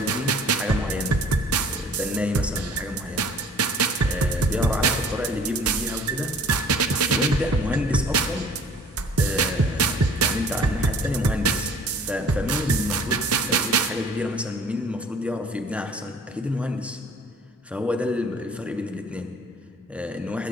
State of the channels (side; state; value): both; normal; correlation 0.51